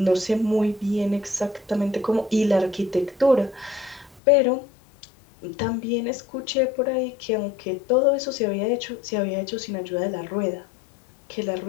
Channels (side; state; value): right; drops out; at 4.2 s